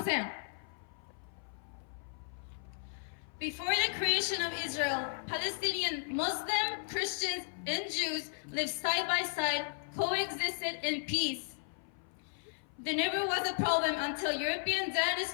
せん。Before the creation of Israel, Palestinian, Muslim, Christians, and Jews lived side by side, coexisted in peace. There never was a problem until European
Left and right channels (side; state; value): right; silent; 54 dB below the other